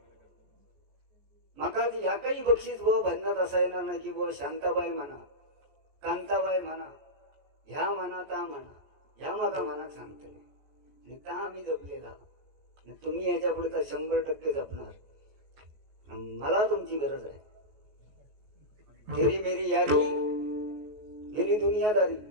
माका ती ह्या काही बक्षीस बुवा भजनात असायला ना की बुवा शांताबाई म्हणा, कांताबाई म्हणा, ह्या म्हणा ता म्हणा, ह्या माका मनात सांगतले आणि ता आम्ही जपलेला. तुम्ही याच्या पुढे तर 100% जपणार. मला तुमची गरज आहे. तेरी मेरी यारी गेली दुनियादारी.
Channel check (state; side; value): late; left; 14 ms